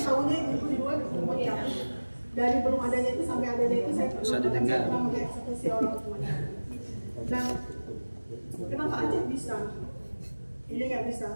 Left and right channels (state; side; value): inverted; both; correlation -1.00